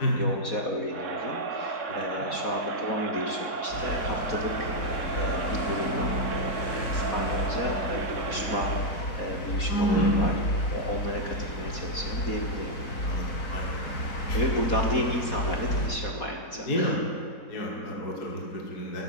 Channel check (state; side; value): late; right; 4.2 ms